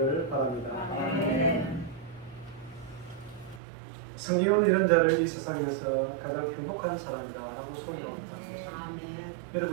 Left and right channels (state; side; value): drops out; left; at 3.6 s